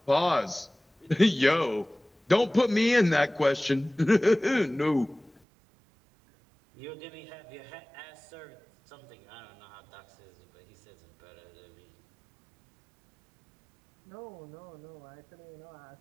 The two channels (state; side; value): drops out; left; at 5.4 s